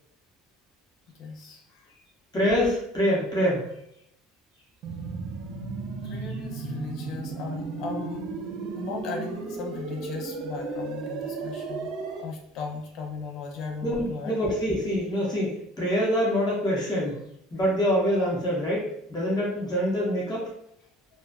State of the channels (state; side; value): normal; both; correlation 0.49